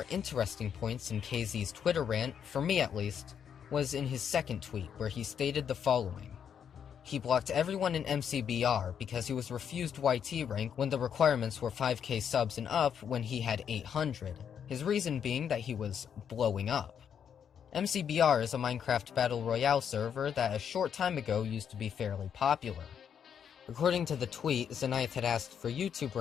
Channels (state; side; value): quieter; right; 8.1 dB